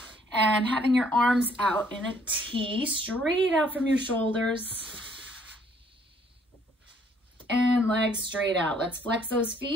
and having your arms out in a T, straight out from your shoulders, and legs straight out. Let's flex those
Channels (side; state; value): both; normal; correlation 0.63